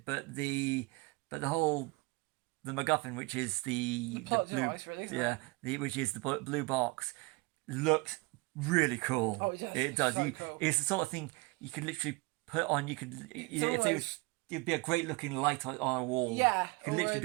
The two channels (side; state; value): left; quieter; 25.9 dB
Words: but the MacGuffin, which is the plot blue, device, really, isn't it? which is the blue box, looks really cool. Oh, it does. It does. So cool. It's the sort of thing you could literally put on. It'd be a great looking light on a wall. Yeah. You could literally